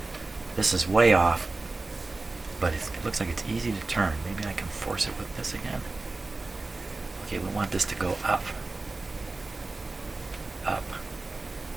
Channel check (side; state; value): left; quieter; 3.3 dB